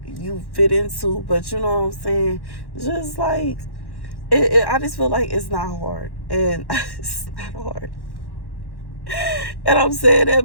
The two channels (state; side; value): late; right; 1.1 ms